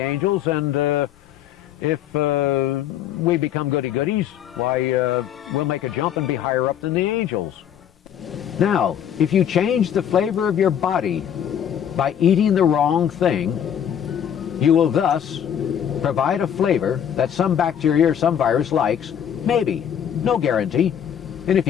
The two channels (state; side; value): quieter; right; 9.3 dB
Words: and If we become goody-goodies, why, we'll make a jump and be higher up than the angels. Now, if you change the flavor of your body by eating the wrong thing, you will thus provide a flavor that some bacteria or some virus likes, maybe, no guarantee. And if